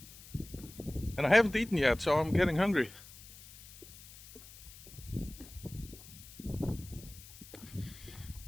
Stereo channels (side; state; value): left; noise; hiss, 18 dB below the sound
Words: And I haven't eaten yet, so I'm getting hungry.